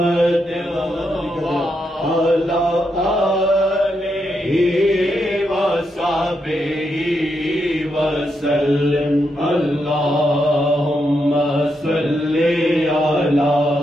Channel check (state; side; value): normal; both; correlation 0.82